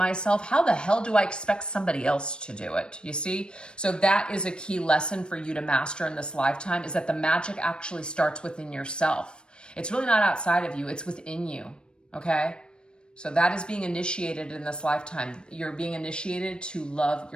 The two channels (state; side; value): late; right; 0.053 ms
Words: how the hell do I expect somebody else to do it? You see? So that is a key lesson for you to master in this lifetime, is that the magic actually starts within yourself. It's really not outside of you. It's within you. Okay? So that is being initiated in this lifetime. You're being initiated to love